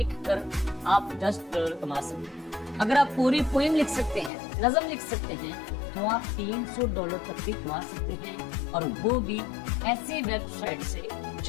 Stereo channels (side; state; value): right; drops out; at 4.3 s